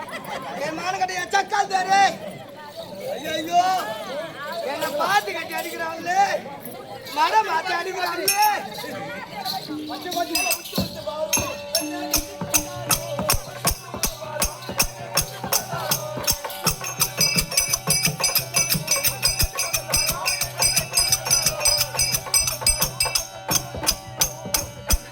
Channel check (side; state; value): both; identical; correlation 1.00